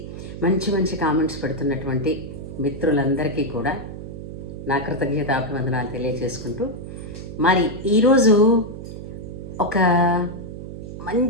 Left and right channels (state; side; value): noise; right; hum, 10 dB below the sound